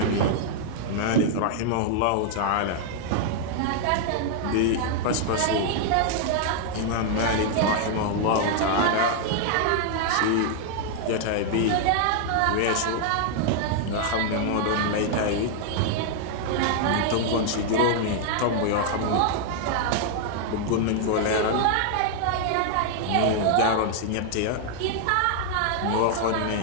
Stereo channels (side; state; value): both; different; correlation 0.00